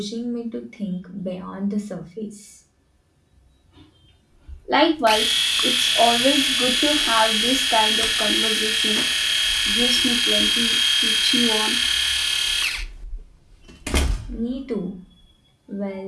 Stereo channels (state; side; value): identical; both; correlation 1.00